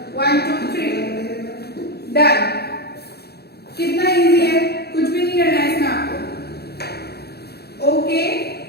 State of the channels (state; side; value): late; right; 0.47 ms